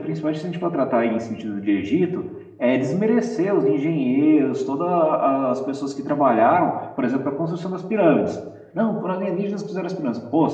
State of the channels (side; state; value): both; identical; correlation 1.00